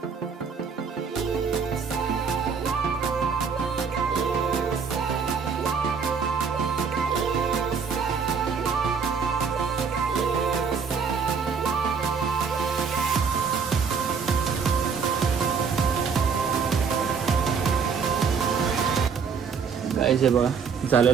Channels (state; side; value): quieter; left; 5.9 dB